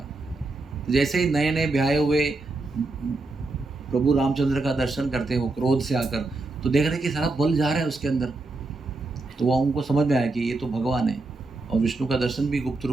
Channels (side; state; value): left; quieter; 3.3 dB